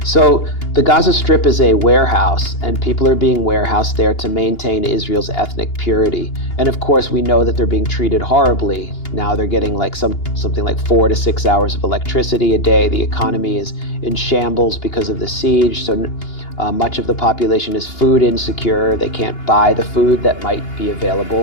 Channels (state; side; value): late; right; 2.8 ms